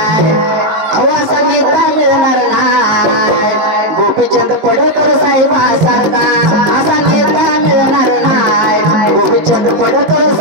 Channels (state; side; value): late; left; 19 ms